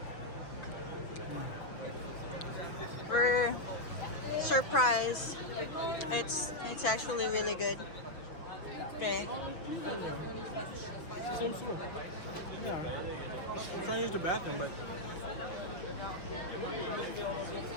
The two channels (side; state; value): right; late; 6.0 ms